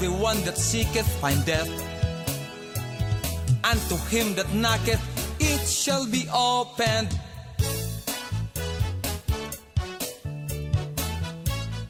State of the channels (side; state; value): both; identical; correlation 1.00